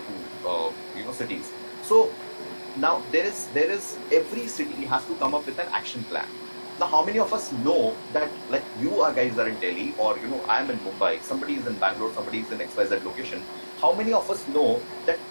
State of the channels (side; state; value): both; inverted; correlation -1.00